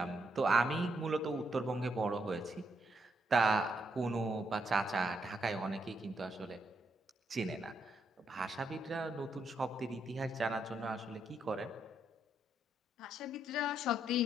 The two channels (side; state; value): both; normal; correlation 0.77